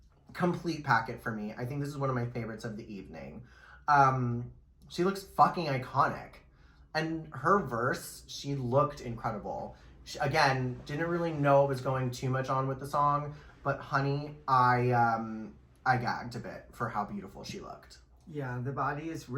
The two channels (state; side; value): identical; both; correlation 1.00